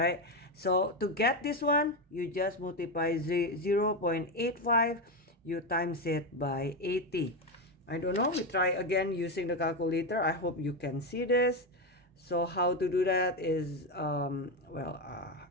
So to get this one, you just multiply 0.85, you times it by 80. I don't know, we try again using the calculator. I hope you can see this. So how to do that is,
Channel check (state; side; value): normal; both; correlation 0.11